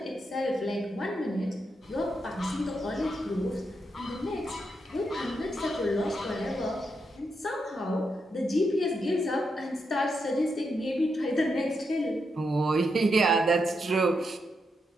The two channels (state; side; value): normal; both; correlation 0.83